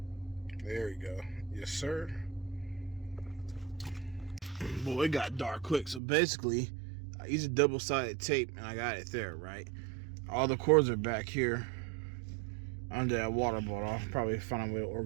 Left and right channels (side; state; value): left; drops out; at 6.0 s